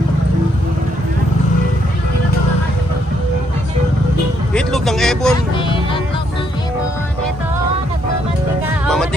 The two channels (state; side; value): normal; both; correlation 0.73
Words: Itlog ng Ebon. Itlog ng ibon. Ito, nagmamantika.